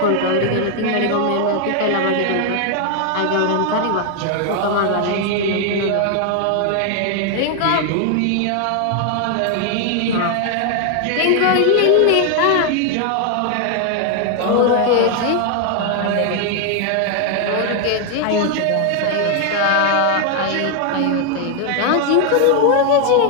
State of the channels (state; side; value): different; both; correlation 0.00